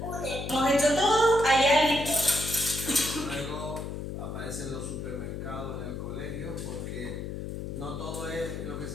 Hemos hecho todo, hay alguien. Luego aparecen los supermercados en el colegio, porque no todo es lo que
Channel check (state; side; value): noise; left; hum, 6 dB below the sound